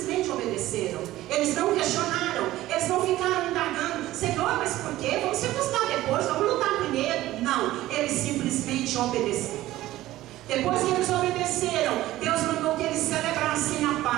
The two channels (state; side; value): quieter; left; 15.7 dB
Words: obedeceram. Eles não questionaram, eles não ficaram indagando: Senhor, mas por quê? Vamos circuncidar depois, vamos lutar primeiro. Não, eles simplesmente obedeceram. Depois que eles obedeceram, Deus mandou que eles celebrassem a